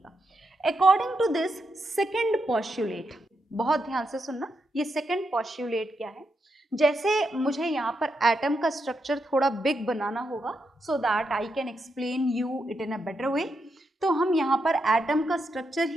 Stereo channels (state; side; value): normal; both; correlation 0.83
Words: According to this second postulate, बहुत ध्यान से सुनना, ये सेकंड पॉस्टुलेट क्या है? जैसे मुझे यहाँ पर एटम का स्ट्रक्चर थोड़ा बिग बनाना होगा so that I can explain you it in a better way, तो हम यहाँ पर एटम का स्ट्रक्चर